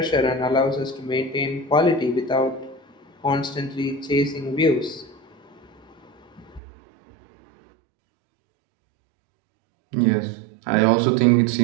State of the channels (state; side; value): drops out; left; at 6.6 s